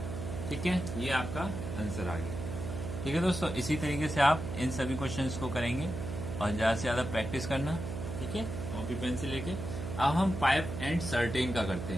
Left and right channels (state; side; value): noise; right; hum, 6 dB below the sound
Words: ठीक है, ये आपका आंसर आ गया। ठीक है दोस्तों, इसी तरीके से आप इन सभी क्वेश्चंस को करेंगे और ज़्यादा से ज़्यादा प्रैक्टिस करना। ठीक है, कॉपी पेन से लेके। अब हम पाइप एंड सर्टेन का करते